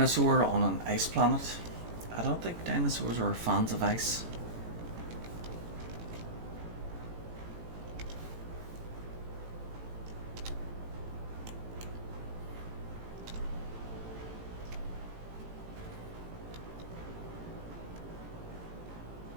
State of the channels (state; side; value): late; left; 18 ms